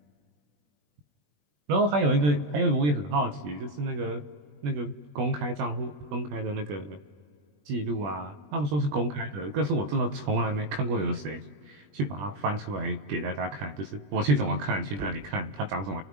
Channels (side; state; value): left; late; 20 ms